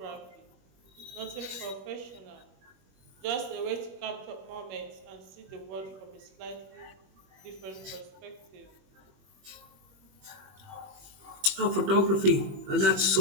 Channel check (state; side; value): late; left; 21 ms